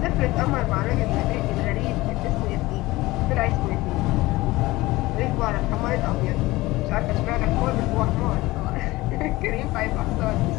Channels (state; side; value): quieter; right; 19.5 dB